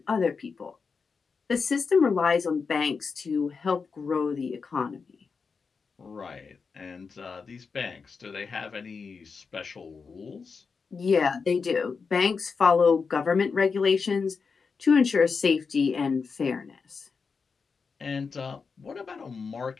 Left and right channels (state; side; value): quieter; right; 5.2 dB